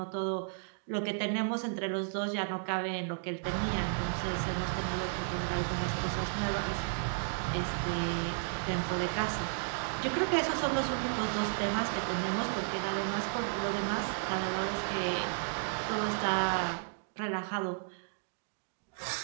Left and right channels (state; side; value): silent; left; digital silence